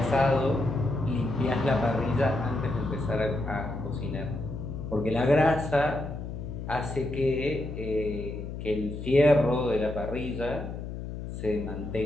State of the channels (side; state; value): left; noise; hum, 7 dB below the sound